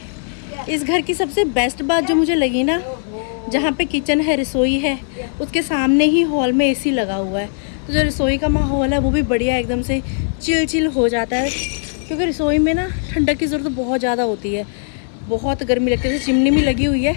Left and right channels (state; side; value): silent; right; 67 dB below the other